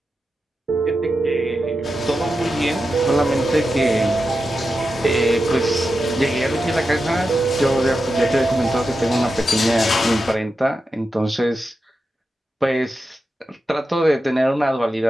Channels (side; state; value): both; normal; correlation 0.90